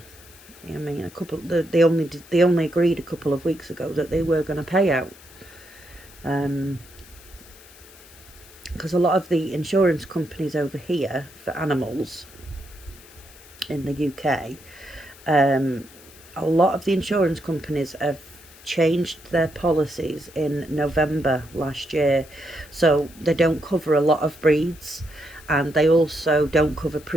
I mean, they only agreed a couple of weeks ago that they were going to pay out. Because a lot of the insurance companies over here for animals in the UK, a lot of the insurance companies have changed their policies in November last year, so they don't cover a lot of breeds, and they also don't cover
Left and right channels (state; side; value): noise; left; hiss, 22 dB below the sound